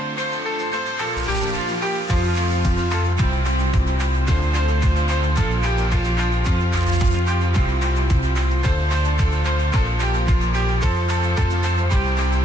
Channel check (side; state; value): both; normal; correlation 0.75